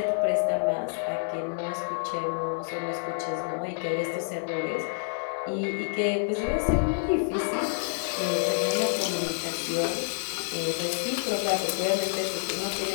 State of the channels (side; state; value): right; silent; digital silence